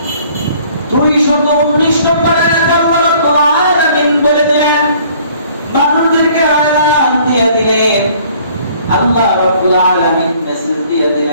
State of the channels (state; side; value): inverted; both; correlation -0.57